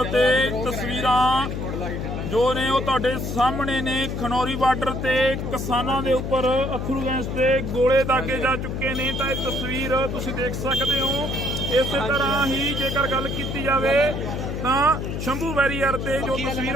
ਤੇ ਤਸਵੀਰਾਂ ਜੋ ਨੇ ਉਹ ਤੁਹਾਡੇ ਸਾਹਮਣੇ ਨੇ। ਖਨੌਰੀ ਬਾਰਡਰ ਤੇ ਕਿਸਾਨਾਂ ਦੇ ਉੱਪਰ ਅੱਥਰੂ ਗੈਸ ਤੇ ਗੋਲੇ ਦਾਗੇ ਜਾ ਚੁੱਕੇ ਨੇ। ਤਾਂ ਇਹ ਤਸਵੀਰ ਤੁਸੀਂ ਦੇਖ ਸਕਦੇ ਹੋ। ਇਸੇ ਤਰ੍ਹਾਂ ਹੀ ਜੇਕਰ ਗੱਲ ਕੀਤੀ ਜਾਵੇ ਤਾਂ ਸ਼ੰਭੂ ਬੈਰੀਅਰ ਤੇ ਜੋ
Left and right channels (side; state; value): left; noise; hum, 4 dB below the sound